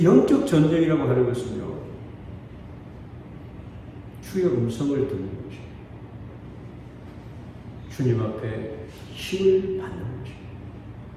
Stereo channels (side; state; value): both; identical; correlation 1.00